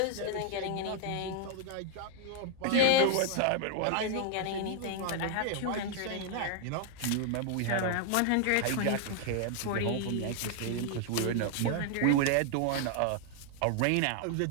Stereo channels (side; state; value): both; different; correlation 0.00